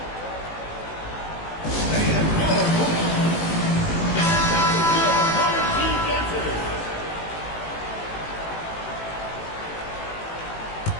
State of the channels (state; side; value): late; right; 18 ms